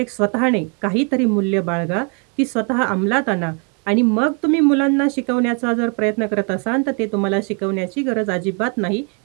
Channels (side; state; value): left; quieter; 37.4 dB